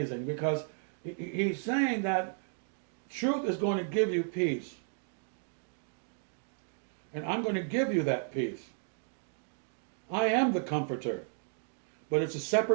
because he's saying that truth is going to give you peace. And I'm going to give you that peace. I am the comforter, but it's a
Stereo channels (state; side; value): silent; left; digital silence